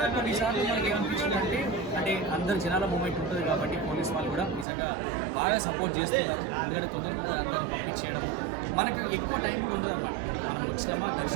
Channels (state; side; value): drops out; left; at 4.7 s